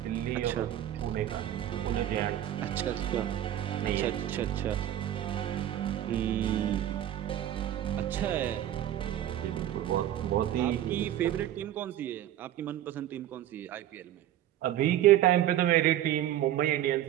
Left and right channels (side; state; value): left; quieter; 12.2 dB